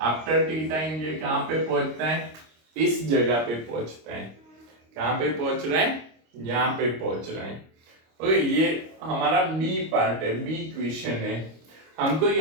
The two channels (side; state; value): left; late; 26 ms